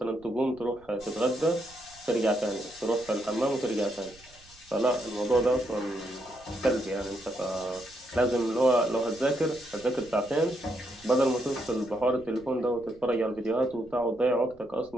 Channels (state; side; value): noise; right; rumble, 26 dB below the sound